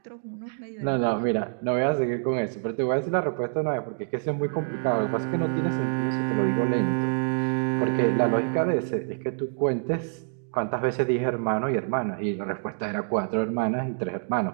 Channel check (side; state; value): left; silent; digital silence